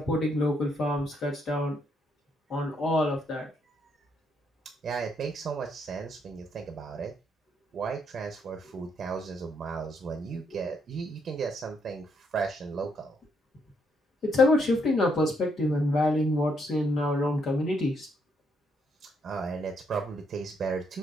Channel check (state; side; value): normal; both; correlation 0.74